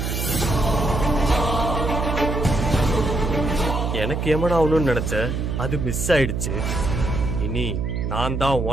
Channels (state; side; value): noise; right; hum, 2 dB below the sound